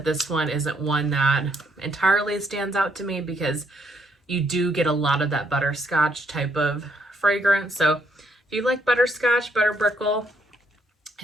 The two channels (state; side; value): normal; both; correlation 0.72